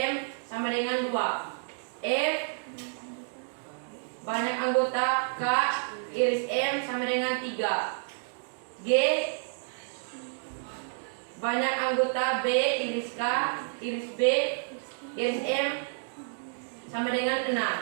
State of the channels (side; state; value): left; silent; digital silence